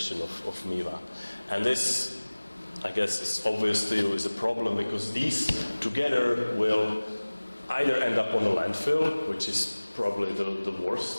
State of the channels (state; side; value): inverted; both; correlation -1.00